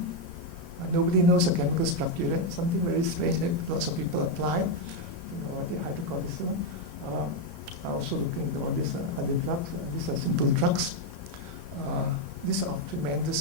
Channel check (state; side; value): late; right; 3.6 ms